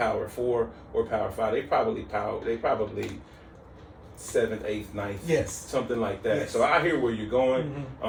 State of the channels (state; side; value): identical; both; correlation 1.00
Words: 4 or Power 5. They probably 7th, 8th, 9th, something like that. Yes. So I hear where you're going,